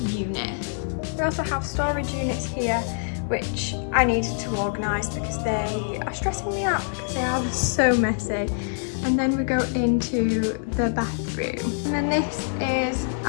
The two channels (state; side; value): silent; right; digital silence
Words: unit. We also have storage units here, which I needed to organise because they are stressing me out because they are so messy. And then we go into the bathroom. And then this is